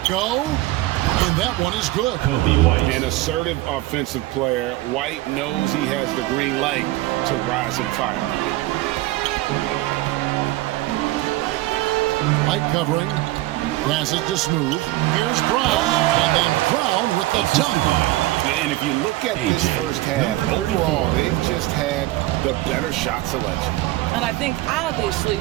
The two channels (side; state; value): left; quieter; 17.5 dB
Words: go? And that one is good. Kobe White. An assertive offensive player. White knows he has the green light to rise and fire. White covering. Passes to Smooth. Here's Brown. And then Brown with the dunk. And And if you look at this first half, overall, they've just had the better shot selection. And I think, obviously,